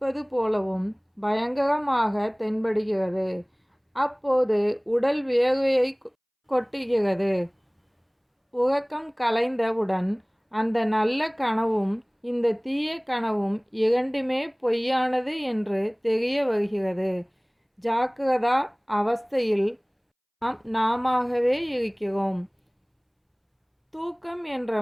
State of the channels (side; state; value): both; identical; correlation 1.00